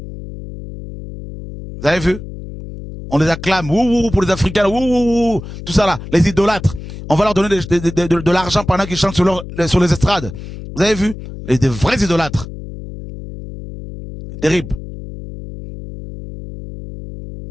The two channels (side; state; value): left; noise; hum, 12 dB below the sound